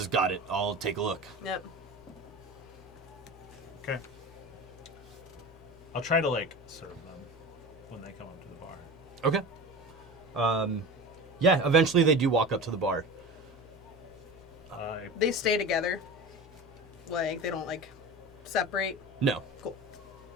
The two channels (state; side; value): normal; both; correlation 0.31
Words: "Got it. I'll take a look." Yep. Okay. I'll try to like serve them when they come up to the bar. Okay. Yeah, eventually they do walk up to the bar. They stay together. Like, they don't, like, separate. No. Cool.